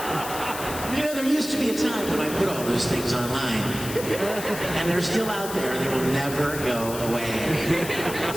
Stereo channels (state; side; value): noise; left; hiss, 9 dB below the sound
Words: You know, there used to be a time when I put all those things online, and they're still out there. They will never go away.